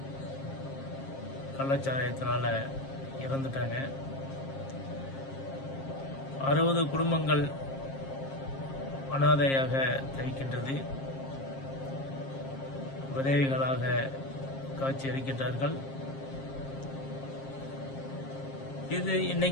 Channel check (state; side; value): late; right; 7.4 ms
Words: கள்ளச்சாராயத்தினால் இறந்துட்டாங்க. 60 குடும்பங்கள் அனாதையாக தவிக்கின்றது. விதவைகளாக காட்சி அளிக்கின்றார்கள். இது